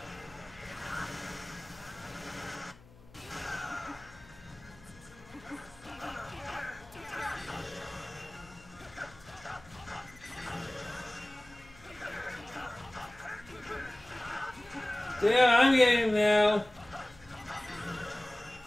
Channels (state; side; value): noise; left; hum, 23 dB below the sound